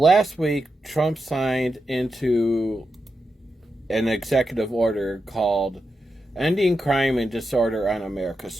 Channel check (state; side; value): normal; both; correlation 0.88